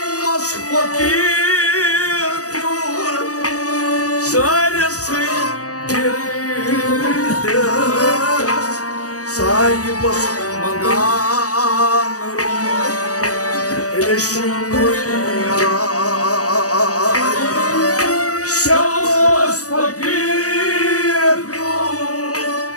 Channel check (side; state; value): right; late; 0.66 ms